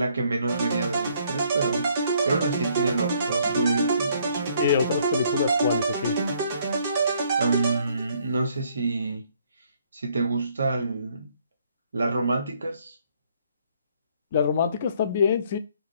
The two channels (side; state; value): both; inverted; correlation -0.66